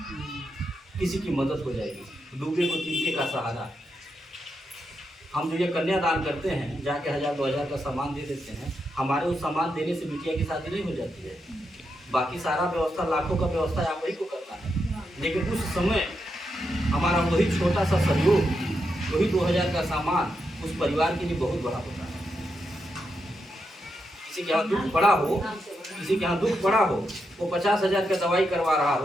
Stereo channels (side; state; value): both; normal; correlation 0.84